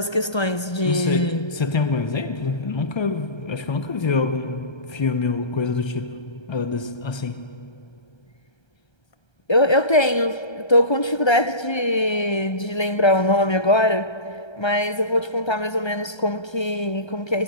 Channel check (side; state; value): right; late; 1.3 ms